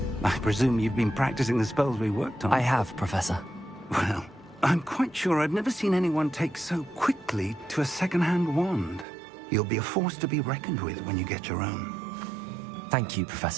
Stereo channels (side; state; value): left; drops out; at 9.1 s